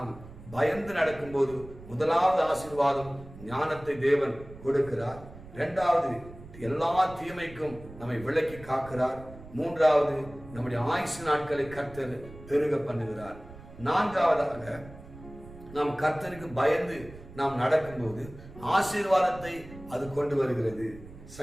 பயந்து நடக்கும் போது முதலாவது ஆசீர்வாதம் ஞானத்தை தேவன் கொடுக்கிறார். இரண்டாவது, எல்லா தீமைக்கும் நம்மை விலக்கி காக்கிறார். மூன்றாவது, நம்முடைய ஆயுசு நாட்களை கர்த்தர் பெருக பண்ணுகிறார். நான்காவதாக, நாம் கர்த்தருக்கு பயந்து நாம் நடக்கும்போது ஆசீர்வாதத்தை அது கொண்டு வருகிறது.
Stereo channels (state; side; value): noise; right; rumble, 17 dB below the sound